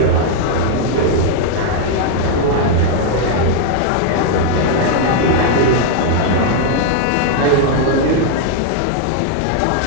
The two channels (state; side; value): different; both; correlation 0.00